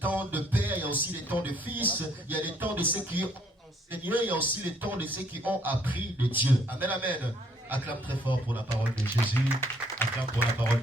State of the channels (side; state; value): both; normal; correlation 0.66